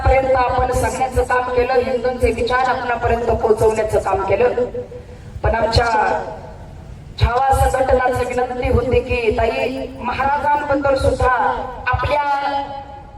आपण सांगण्याचं काम केलं, हिंदूंचे विचार आपणापर्यंत पोहोचवण्याचं काम केलं. पण आमच्या छावा संघटनाची विनंती होती की ताई, महाराजांबद्दल सुद्धा आपल्या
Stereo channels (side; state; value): both; identical; correlation 1.00